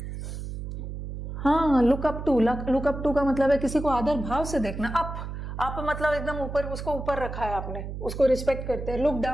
हाँ, लुक अप टू का मतलब है किसी को आदर भाव से देखना। अप मतलब एकदम ऊपर, उसको ऊपर रखा है आपने, उसको रिस्पेक्ट करते हैं। लुक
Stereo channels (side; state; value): right; noise; hum, 7 dB below the sound